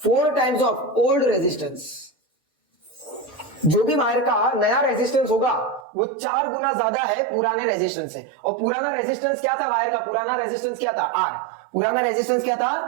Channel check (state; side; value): drops out; left; at 5.9 s